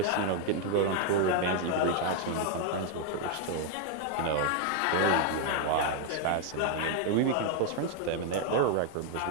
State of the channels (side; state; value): both; different; correlation 0.00